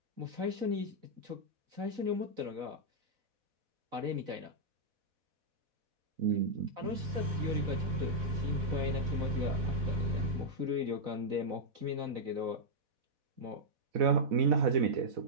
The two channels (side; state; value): left; late; 4.0 ms